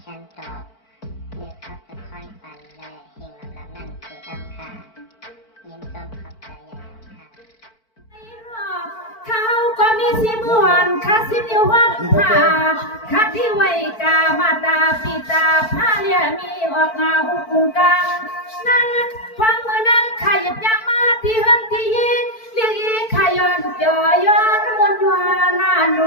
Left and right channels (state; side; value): late; right; 4.5 ms